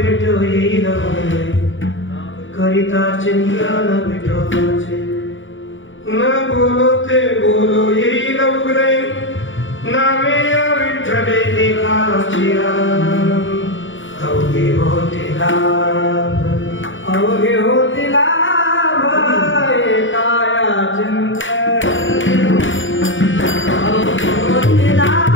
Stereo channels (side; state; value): right; late; 0.56 ms